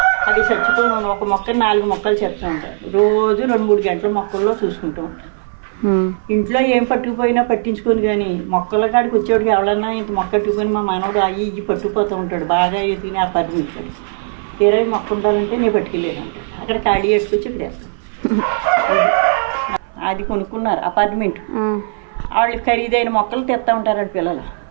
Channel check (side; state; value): left; silent; 59 dB below the other